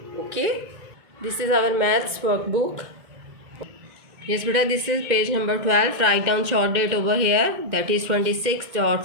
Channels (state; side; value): late; left; 2.1 ms